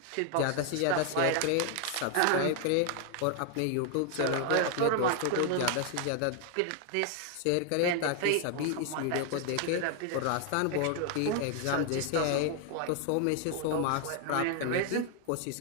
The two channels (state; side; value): different; both; correlation 0.00